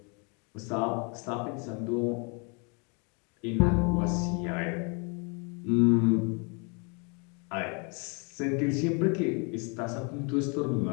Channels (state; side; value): quieter; right; 34.1 dB